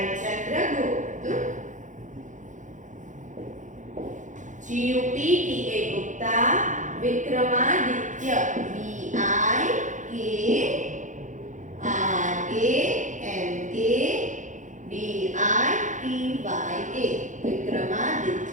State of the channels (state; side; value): late; left; 0.36 ms